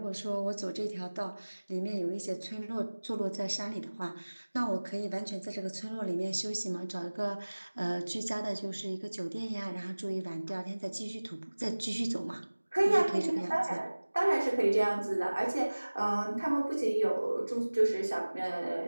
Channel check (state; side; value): inverted; both; correlation -1.00